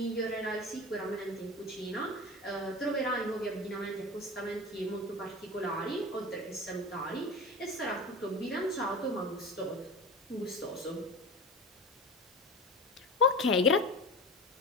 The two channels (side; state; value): both; normal; correlation 0.31